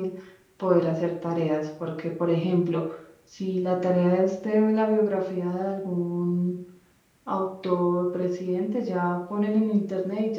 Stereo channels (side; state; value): both; identical; correlation 1.00